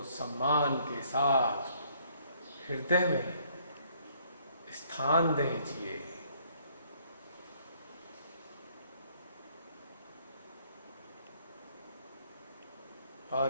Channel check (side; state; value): both; inverted; correlation -0.65